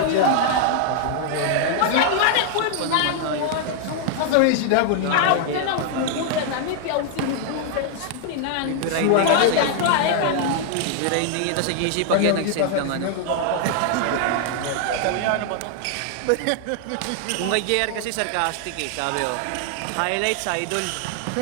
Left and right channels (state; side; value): different; both; correlation 0.00